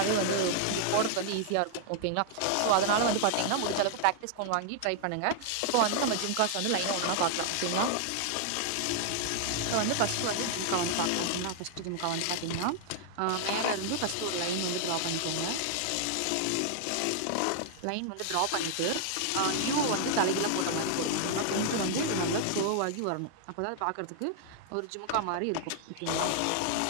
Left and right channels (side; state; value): both; different; correlation -0.01